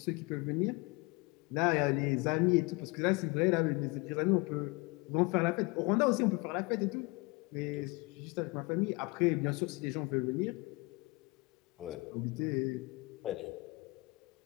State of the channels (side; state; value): right; quieter; 26.2 dB